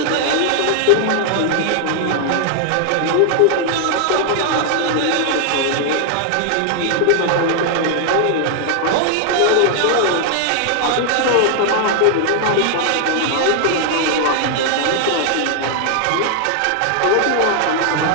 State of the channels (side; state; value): both; different; correlation 0.00